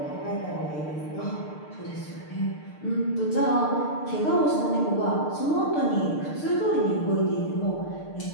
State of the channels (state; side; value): late; right; 6.7 ms